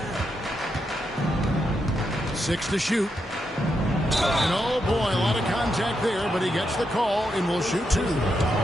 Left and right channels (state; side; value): normal; both; correlation 0.83